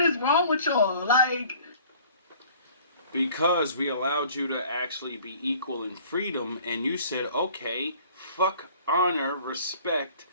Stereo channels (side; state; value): both; inverted; correlation -0.52